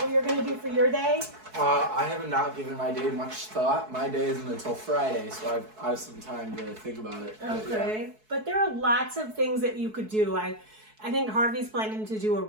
what you're going to do for your day? I have not given my day much thought. My day isn't until Friday, so I have some time to think about it. Okay. But there are lots of things that you could do. I think Harvey's planning to do a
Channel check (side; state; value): left; late; 4.6 ms